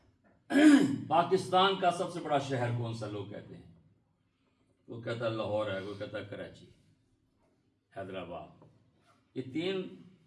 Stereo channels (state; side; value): identical; both; correlation 1.00